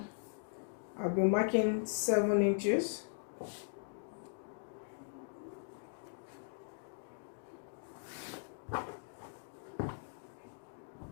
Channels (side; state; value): right; silent; digital silence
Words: I'll be marking 7 inches.